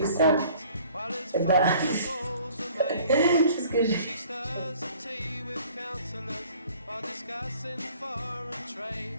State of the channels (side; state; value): both; inverted; correlation -0.53